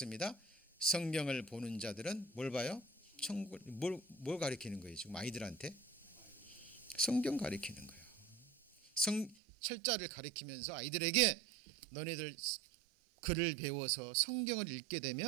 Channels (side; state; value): left; drops out; at 9.3 s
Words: 성경을 보는 자들은 뭘 봐요? 천국. 뭘 가리키는 거예요? 지금 아이들한테 성경 가리키는 거예요. 철자를 가리키면서 아이들에게 너네들 글을 배워서 성경을 읽게